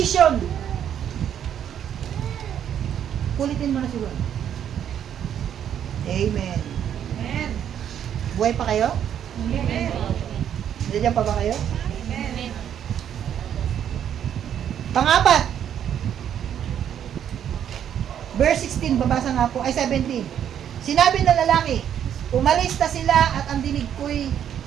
kulitin mo na si Lord. Amen. Amen. Buhay pa kayo? Amen. Nandiyan pa ba kayo? Amen. Pang-apat. Verse 16, babasa nga po, ay 17. Sinabi ng lalaki, umalis na sila at ang dinig ko'y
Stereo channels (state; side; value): quieter; left; 9.5 dB